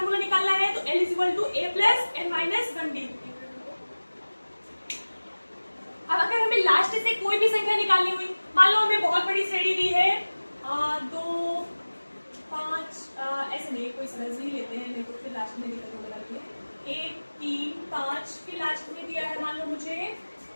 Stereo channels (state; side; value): inverted; both; correlation -1.00